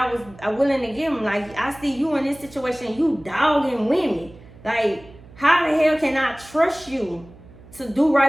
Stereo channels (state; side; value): noise; right; hum, 21 dB below the sound